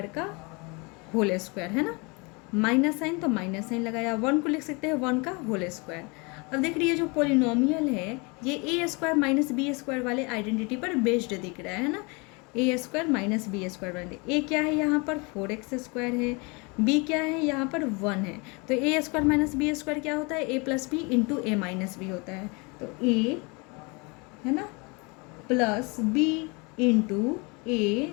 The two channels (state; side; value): quieter; right; 29.3 dB